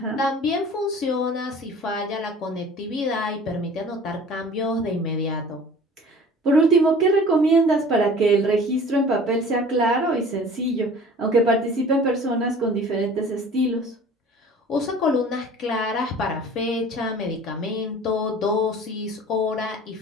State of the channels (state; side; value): normal; both; correlation 0.45